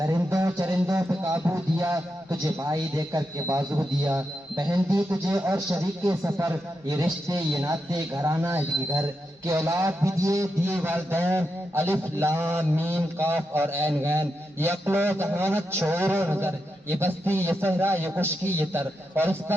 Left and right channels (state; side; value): normal; both; correlation 0.86